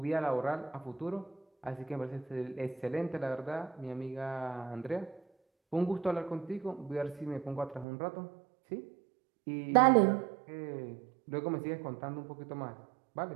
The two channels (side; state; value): left; drops out; at 7.9 s